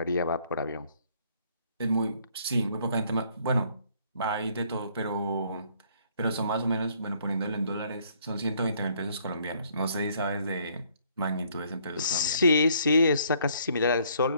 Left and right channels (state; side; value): inverted; both; correlation -0.64